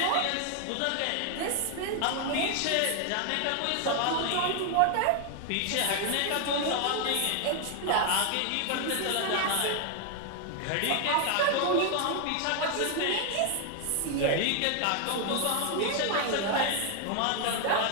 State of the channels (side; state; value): both; different; correlation 0.00